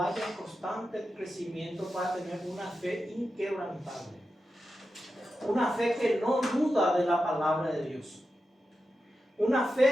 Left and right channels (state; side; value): normal; both; correlation 0.90